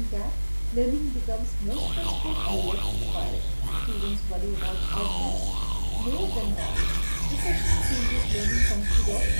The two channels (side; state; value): both; inverted; correlation -1.00